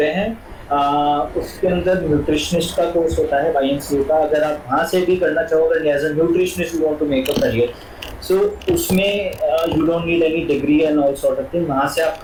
हैं. उसके अंदर न्यूट्रिशनिस्ट का कोर्स होता है YMCA का. अगर आप वहाँ से भी करना चाहोगे as a nutritionist you want to make a career, so उसमें you don't need any degree and all sort of thing. वहाँ से आप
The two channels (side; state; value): both; identical; correlation 1.00